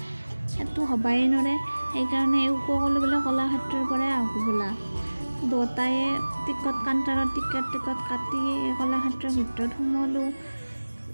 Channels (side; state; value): both; inverted; correlation -1.00